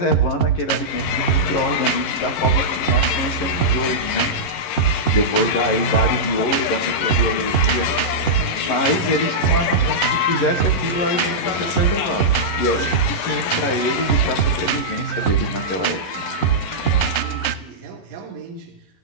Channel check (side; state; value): right; late; 11 ms